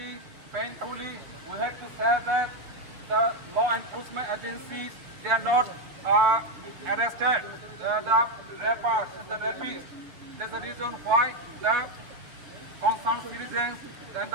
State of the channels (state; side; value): late; left; 7.2 ms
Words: painfully, we have to say that the law enforcement agencies, they are not arrested the rappers, the rapists. That's the reason why the concerned citizens and